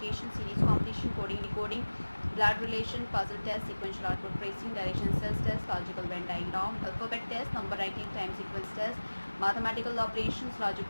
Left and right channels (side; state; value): both; inverted; correlation -1.00